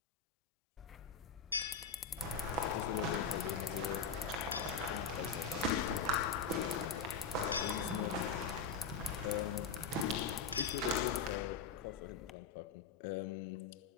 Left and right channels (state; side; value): quieter; right; 5.7 dB